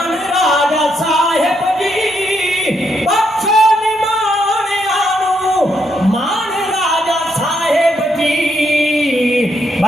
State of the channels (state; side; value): normal; both; correlation 0.77